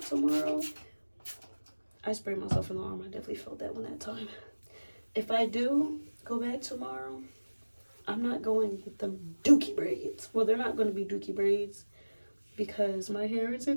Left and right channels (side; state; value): both; inverted; correlation -1.00